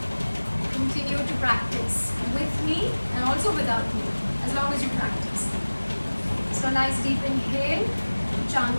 continue to practice with me and also without me, as long as you practice. So nice deep inhale, chant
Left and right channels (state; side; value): inverted; both; correlation -1.00